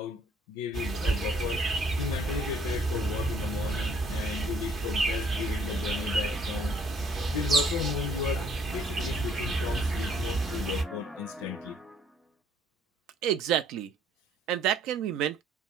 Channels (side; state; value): both; normal; correlation 0.62